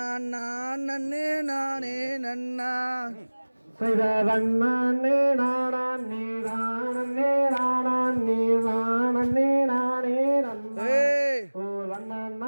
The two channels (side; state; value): both; inverted; correlation -1.00